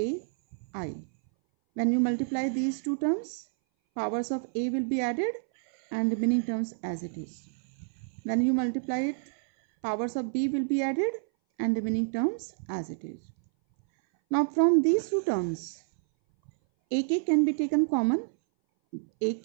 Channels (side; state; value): left; silent; 59 dB below the other